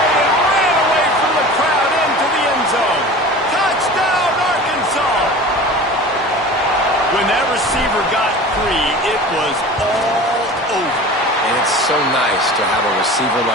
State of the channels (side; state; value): both; normal; correlation 0.37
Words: and ran away from the crowd into the end zone. Touchdown, Arkansas! When that receiver got free, it was all over. And it's so nice to have a receiver